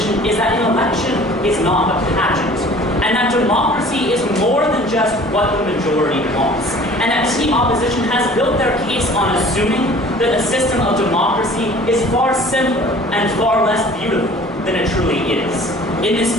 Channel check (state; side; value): normal; both; correlation 0.48